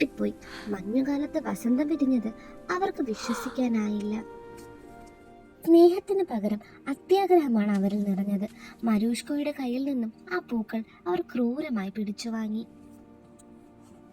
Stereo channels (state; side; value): identical; both; correlation 1.00